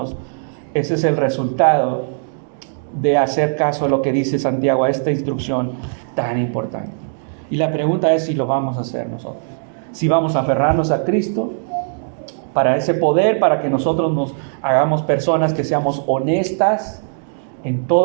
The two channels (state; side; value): silent; left; digital silence